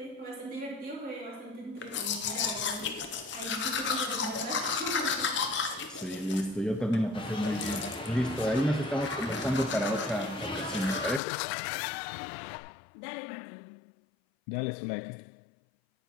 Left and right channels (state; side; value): drops out; right; at 11.2 s